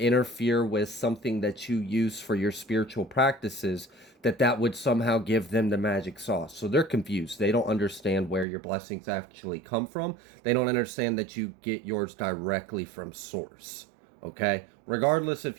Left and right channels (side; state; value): left; drops out; at 8.5 s